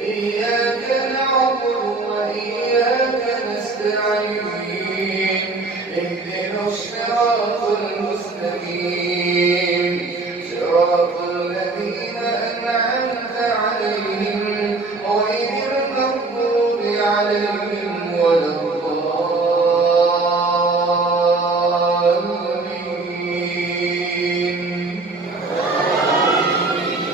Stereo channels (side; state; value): left; quieter; 3.5 dB